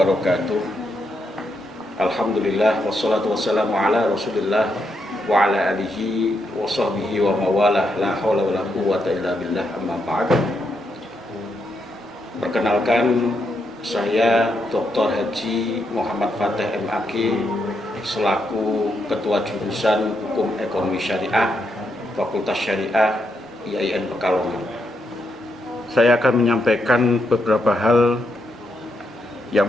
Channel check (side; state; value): both; normal; correlation 0.80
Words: Alhamdulillah wassalatu wassalamu ala Rasulillah wa ala alihi wa sahbihi wa mawalah, la haula wala quwwata illa billah, amma ba'd. Perkenalkan, saya Dr. Haji Muhammad Fateh MAG selaku Ketua Jurusan Hukum Ekonomi Syariah Fakultas Syariah IAIN Pekalongan. Saya akan menyampaikan beberapa hal. Yang